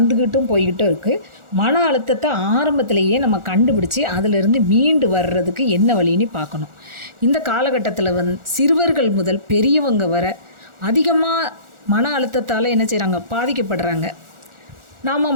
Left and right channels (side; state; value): left; late; 1.4 ms